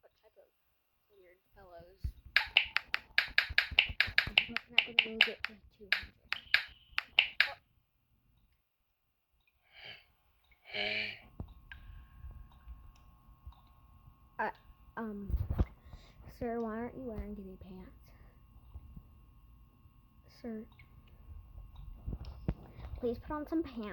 What type of weird fellows? I'm not going to get to 200. Sir, why aren't you wearing any pants? Sir, please put on some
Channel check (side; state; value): both; identical; correlation 1.00